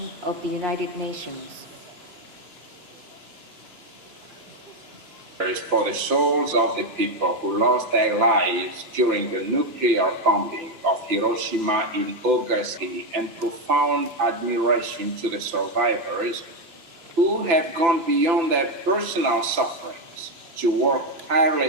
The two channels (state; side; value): late; left; 3.0 ms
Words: of the United Nations. For the souls of the people who lost their lives during the nuclear bombing of Hiroshima in August, and profound admiration to the survivors who have gone beyond their personal sufferings to work